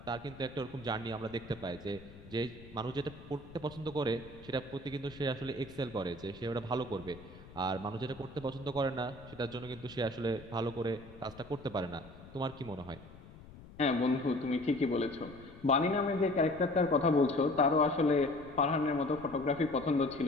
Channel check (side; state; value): left; noise; rumble, 18 dB below the sound